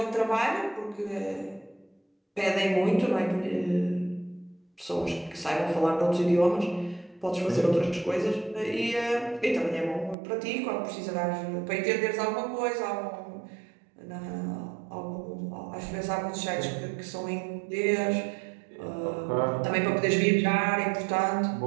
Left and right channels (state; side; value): drops out; left; at 10.2 s